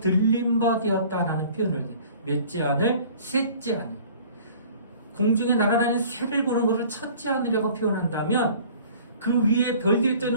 바 되었다라는 표현을 해요. 몇째 하늘? 셋째 하늘. 공중에 날아다니는 새를 보는 것을 첫째 하늘이라고 표현한다면 그 위에 별들이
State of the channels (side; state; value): both; inverted; correlation -0.49